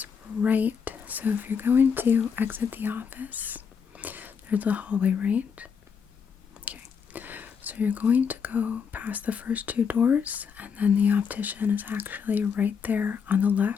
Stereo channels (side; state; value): right; quieter; 6.5 dB